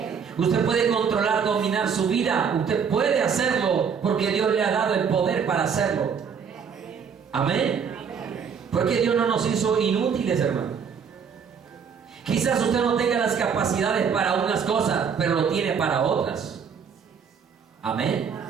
Usted puede controlar, dominar su vida. Usted puede hacerlo porque Dios le ha dado el poder para hacerlo. Amén. Porque Dios no nos hizo inútiles, hermano. Quizás usted no tenga las capacidades para unas cosas, pero lo tiene para otras. Amén.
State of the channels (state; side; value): quieter; left; 6.7 dB